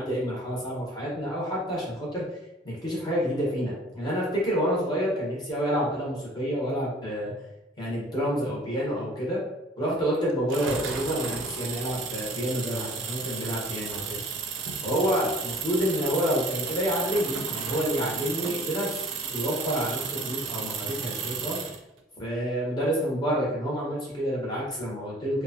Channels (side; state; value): both; normal; correlation 0.50